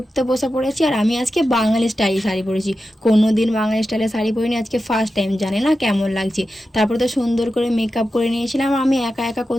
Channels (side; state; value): both; normal; correlation 0.91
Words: বসে পড়েছি। আর আমি আজকে বাঙালি স্টাইল শাড়ি পরেছি। কোনো দিন বাঙালি স্টাইলে শাড়ি পরিনি, আজকে ফার্স্ট টাইম, জানি না কেমন লাগছে। তারপর তো সুন্দর করে মেকআপ করে নিয়েছিলাম। আমি একা একা